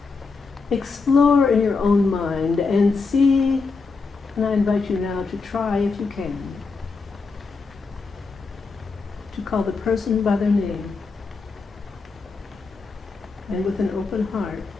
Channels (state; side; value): quieter; right; 4.4 dB